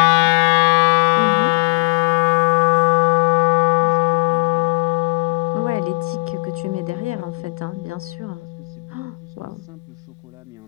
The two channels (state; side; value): quieter; right; 28.6 dB